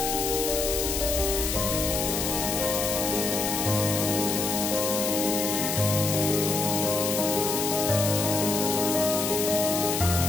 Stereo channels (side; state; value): left; noise; hiss, 1 dB below the sound